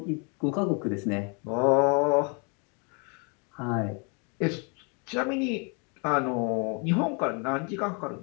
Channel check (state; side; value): quieter; right; 34.9 dB